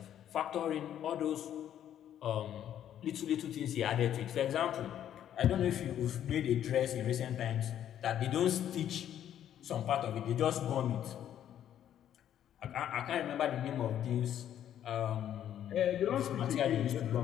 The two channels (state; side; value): quieter; right; 10.6 dB